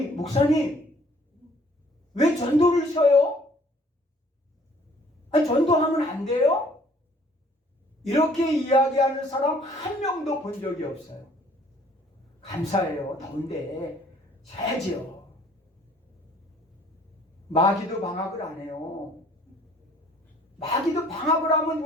목사님 왜 전도를 쉬어요? 아니 전도하면 안 돼요? 이렇게 이야기하는 사람 한 명도 본 적이 없어요. 감사해요. 더운데 쉬어야지요. 마귀도 방학을 안 해요. 마귀도 방학을 하면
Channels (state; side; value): normal; both; correlation 0.58